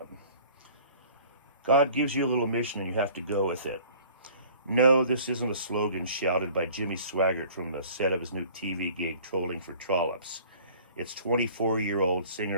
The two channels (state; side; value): inverted; both; correlation -0.50